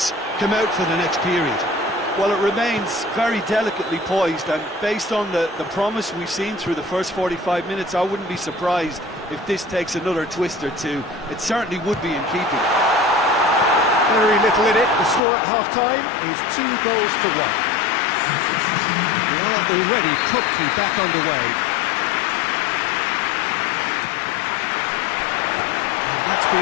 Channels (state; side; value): drops out; right; at 15.2 s